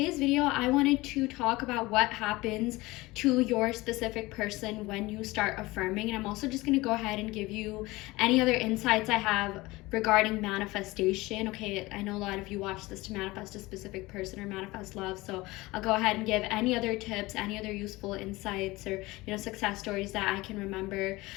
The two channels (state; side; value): quieter; right; 20.8 dB